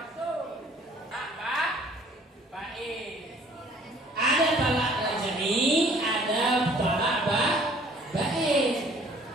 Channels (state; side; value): normal; both; correlation 0.56